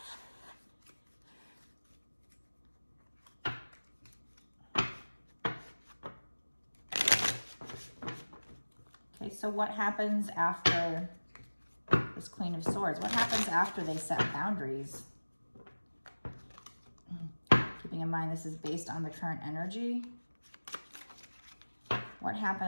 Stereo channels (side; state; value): both; inverted; correlation -1.00